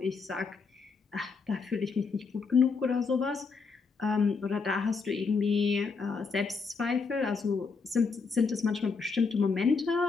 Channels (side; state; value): right; quieter; 4.8 dB